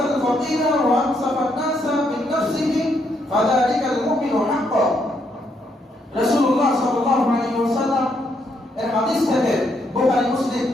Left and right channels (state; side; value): normal; both; correlation 0.75